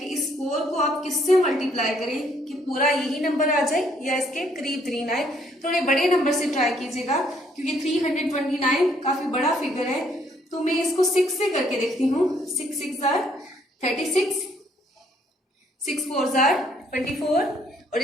इस 4 को आप किससे मल्टीप्लाई करें कि पूरा यही नंबर आ जाए या इसके करीब करीब आए। थोड़े बड़े नंबर से ट्राई कीजिएगा क्योंकि 329 काफी बड़ा फिगर है। तो मैं इसको 6 से करके देखती हूँ। 6 6 = 36, 6 4 = 24 और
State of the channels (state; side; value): normal; both; correlation 0.67